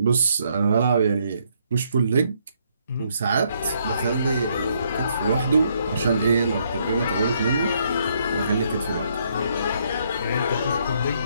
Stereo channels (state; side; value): inverted; both; correlation -0.71